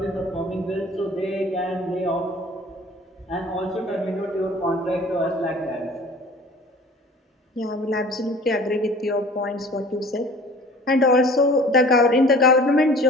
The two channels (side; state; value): both; normal; correlation 0.46